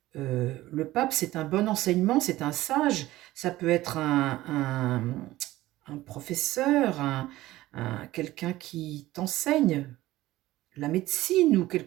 Le pape, c'est un bon enseignement, c'est un sage. Ça peut être un professeur, quelqu'un qui t'enseigne la médecine ou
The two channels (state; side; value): quieter; left; 16.7 dB